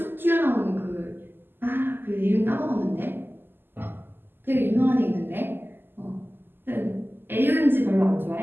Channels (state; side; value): late; left; 0.097 ms